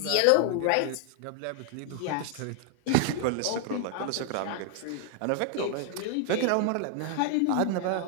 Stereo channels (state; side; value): different; both; correlation 0.00